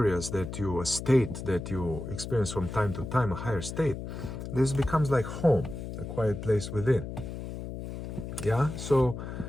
a state that you experience from time to time, a higher state, this becomes like home, a quiet place within. So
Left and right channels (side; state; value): left; noise; hum, 8 dB below the sound